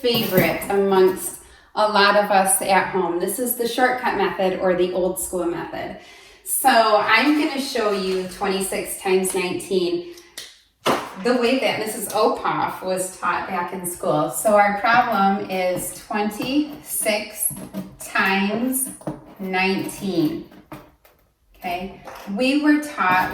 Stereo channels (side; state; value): both; identical; correlation 1.00